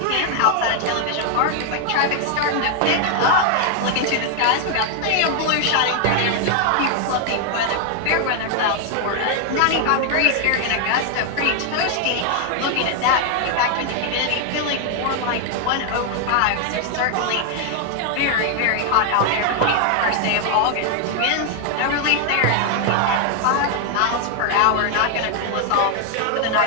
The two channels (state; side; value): different; both; correlation 0.00